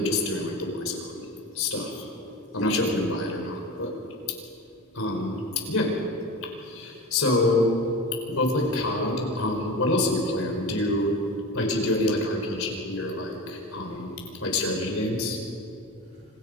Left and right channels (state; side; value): normal; both; correlation 0.29